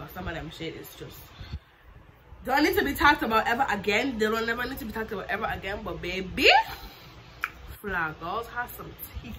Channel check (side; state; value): both; identical; correlation 1.00